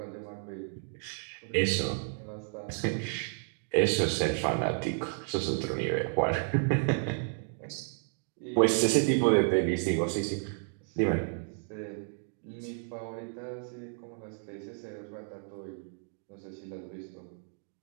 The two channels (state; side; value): silent; left; 56 dB below the other